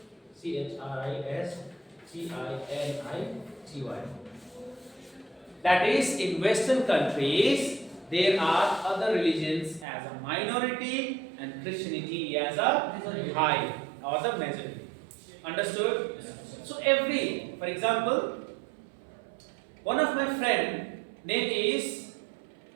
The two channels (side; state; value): left; drops out; at 9.9 s